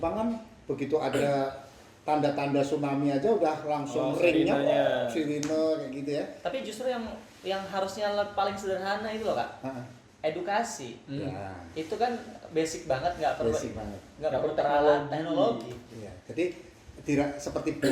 kan begitu ada tanda-tanda tsunami aja udah langsung ringnya sirine kayak gitu ya. Tapi justru yang harusnya paling sederhana itu loh Kak. Edukasi. Itu kan basic banget, nggak perlu teknologi. Iya. Jadi seperti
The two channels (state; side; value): identical; both; correlation 1.00